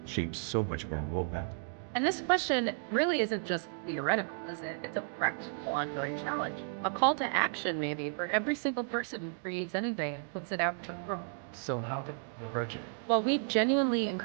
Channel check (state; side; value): silent; left; digital silence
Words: shape so much of our roadmap? And this question really isn't just theoretical, is it? It's a practical, ongoing challenge. A call to action, maybe, for every single person who creates anything and puts it out to the world. So how to approach it? Well, we genuinely